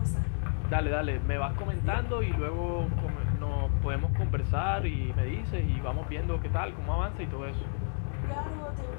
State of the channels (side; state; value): right; silent; 57 dB below the other